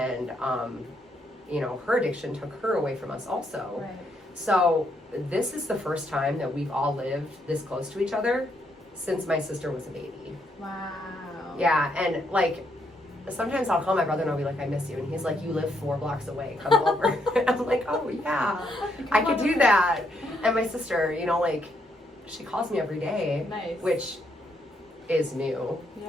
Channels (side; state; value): both; normal; correlation 0.75